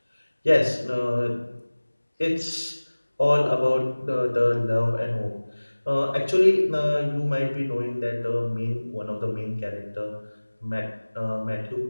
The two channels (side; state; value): both; inverted; correlation -1.00